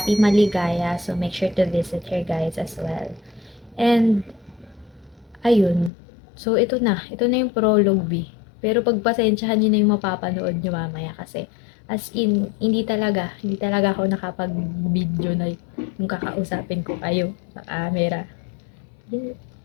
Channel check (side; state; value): right; drops out; at 5.9 s